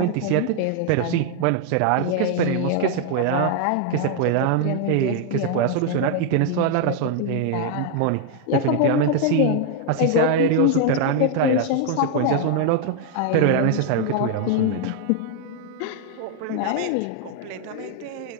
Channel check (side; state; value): both; different; correlation 0.00